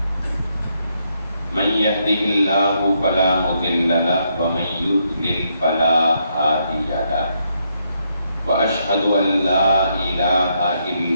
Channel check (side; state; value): both; inverted; correlation -0.77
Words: من يهده الله فلا مضل له ومن يضلل فلا هادي له وأشهد أن لا إله